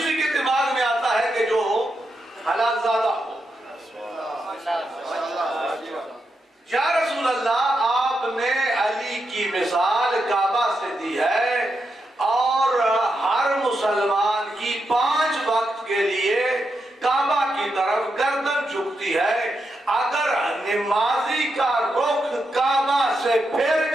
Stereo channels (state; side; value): normal; both; correlation 0.85